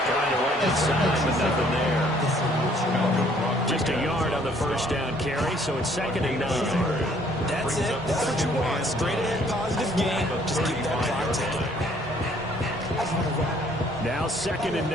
to run inside, but nothing there. Just a yard on the 1st down carry, so it's 2nd and 9. That's it. That's what you want. Straight ahead, positive game. Just keep that clock ticking. Now 2nd and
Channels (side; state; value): both; normal; correlation 0.61